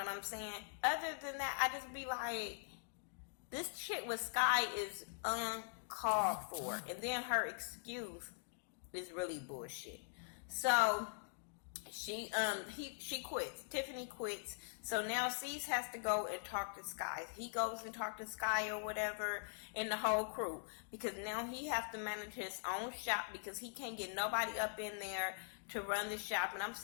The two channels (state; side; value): silent; right; digital silence